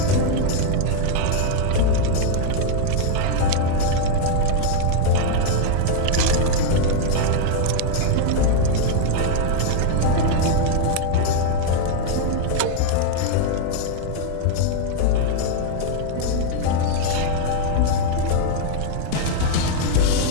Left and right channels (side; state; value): both; different; correlation 0.00